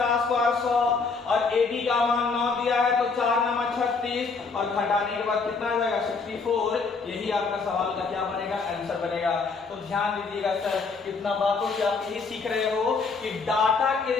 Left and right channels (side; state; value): right; quieter; 4.6 dB